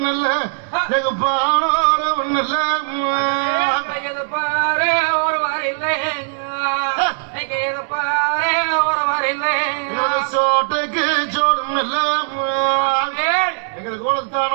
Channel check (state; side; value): silent; left; digital silence